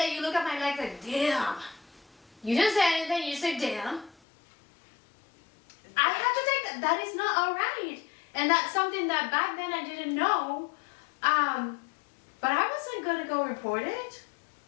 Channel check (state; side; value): drops out; right; at 4.2 s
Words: you look at my legs like, damn. You didn't say anything, you said damn. I have to take that. That is not all right. And that's something that back then I didn't know. But I wasn't going to go report it.